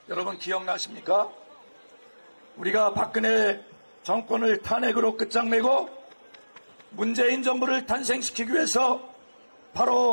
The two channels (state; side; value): inverted; both; correlation -1.00